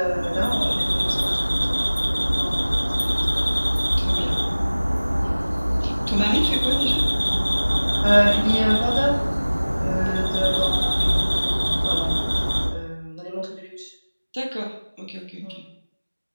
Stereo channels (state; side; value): inverted; both; correlation -1.00